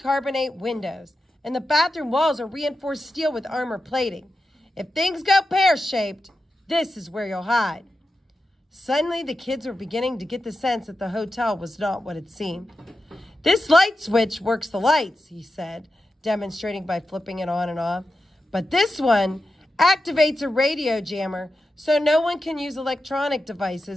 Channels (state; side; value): normal; both; correlation 0.90